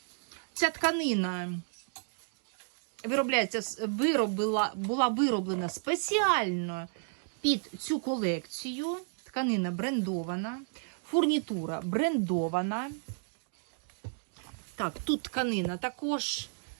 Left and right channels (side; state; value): left; silent; 56 dB below the other